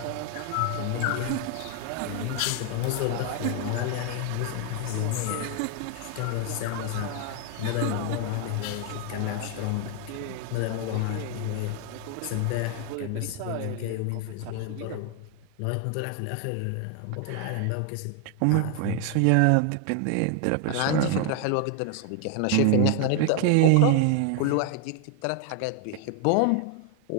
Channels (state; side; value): different; both; correlation 0.00